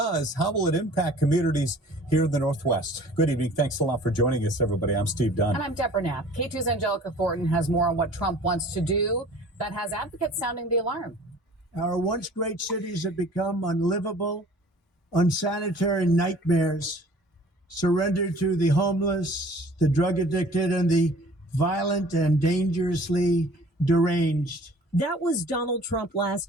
how will it impact communities here in the Northwest? Good evening. Thanks a lot for joining us, everybody. I'm Steve Dunn. And I'm Deborah Knapp. K2's Angelica Thornton has more on what Trump wants to do that has advocates sounding the alarm. Our once great cities have become unlivable, unsanitary nightmares, surrendered to the homeless, the drug addicted, and the violent and dangerously deranged. That was Donald Trump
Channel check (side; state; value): both; normal; correlation 0.49